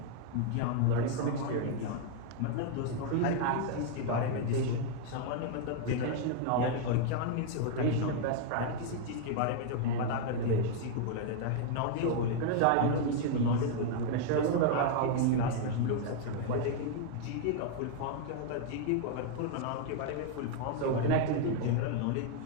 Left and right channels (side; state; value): both; different; correlation 0.00